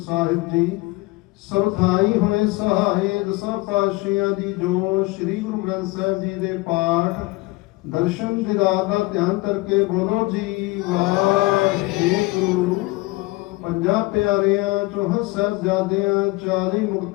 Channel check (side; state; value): right; quieter; 22.2 dB